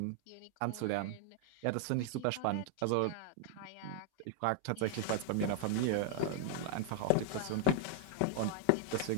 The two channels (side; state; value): both; different; correlation 0.00